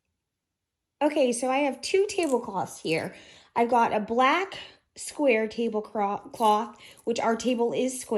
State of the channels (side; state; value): both; identical; correlation 1.00